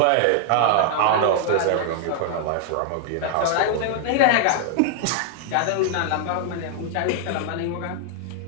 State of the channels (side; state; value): both; different; correlation 0.00